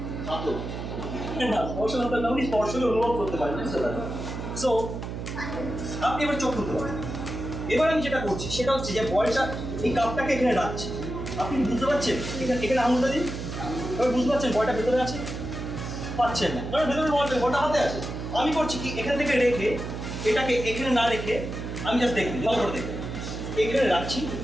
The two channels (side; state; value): right; noise; hum, 6 dB below the sound